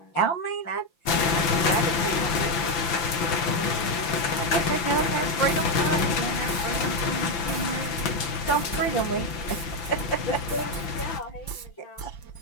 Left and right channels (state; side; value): late; right; 5.9 ms